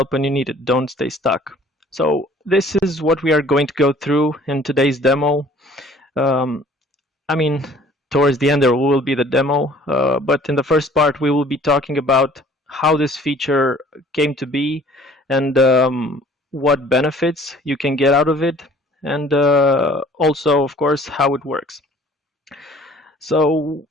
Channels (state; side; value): normal; both; correlation 0.53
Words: when you need it. Don't stay stuck. So this is what we are going to go through in today's demo. I mean, towards the end there will be the demo, but in the first part we will be talking about how this feature came to be and what benefits you can get out of it, and also, of course, how it works. So